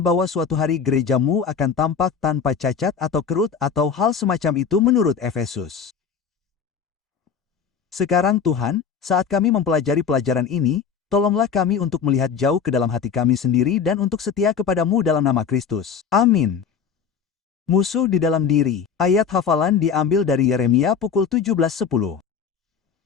suatu hari gereja-Mu akan tampak tanpa cacat atau kerut atau hal semacam itu menurut Efesus. Sekarang Tuhan, saat kami mempelajari pelajaran ini, tolonglah kami untuk melihat jauh ke dalam hati kami sendiri dan untuk setia kepada-Mu dalam nama Kristus. Amin. Musuh di dalam diri. Ayat hafalan diambil dari Yeremia pukul 17:10.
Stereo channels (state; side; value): quieter; right; 6.7 dB